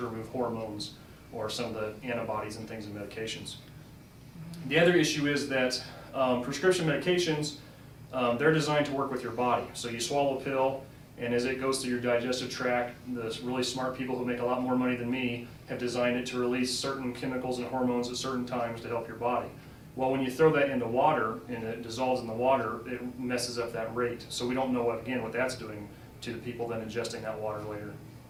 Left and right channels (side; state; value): both; identical; correlation 1.00